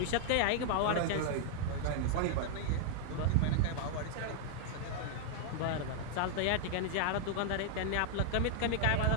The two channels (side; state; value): both; different; correlation 0.00